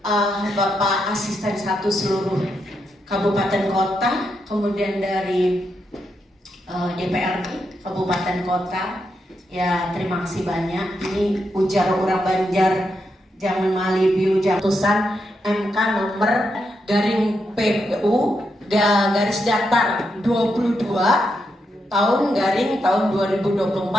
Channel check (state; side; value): normal; both; correlation 0.83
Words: Bapak Asisten 1 seluruh Kabupaten Kota, kemudian dari DPRD Kabupaten Kota, ya terima kasih banyak. Ini ujar orang Banjar, jangan malibiu jatusan MK nomor garing PU garis datar 22 tahun 2024